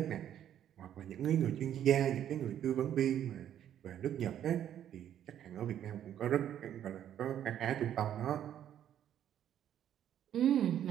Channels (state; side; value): quieter; left; 10.5 dB